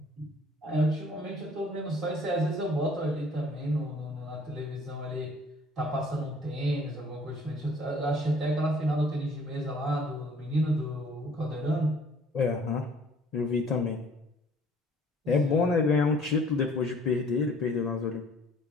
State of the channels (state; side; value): normal; both; correlation 0.56